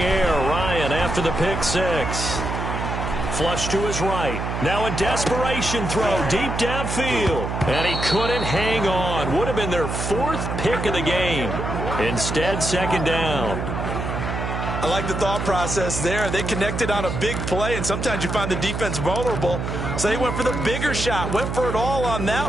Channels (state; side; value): noise; right; hum, 3 dB below the sound